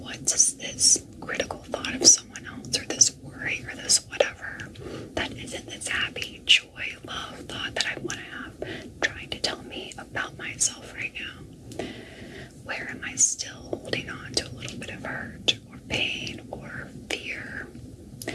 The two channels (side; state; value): both; identical; correlation 1.00